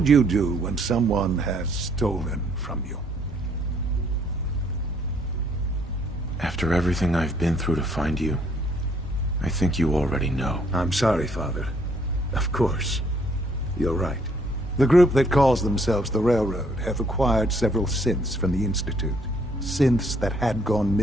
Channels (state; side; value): normal; both; correlation 0.66